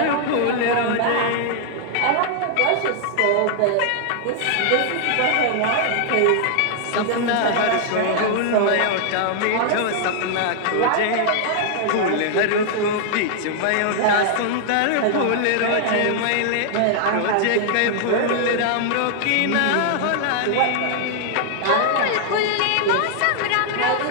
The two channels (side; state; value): both; different; correlation 0.00